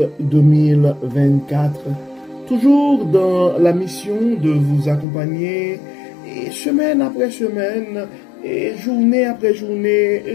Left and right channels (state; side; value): drops out; right; at 5.1 s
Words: 2024. Toujours dans la mission de vous accompagner semaine après semaine et journée après journée,